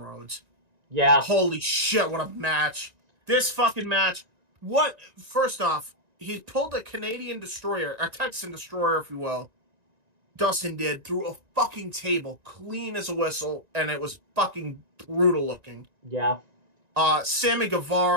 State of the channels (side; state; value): left; late; 1.9 ms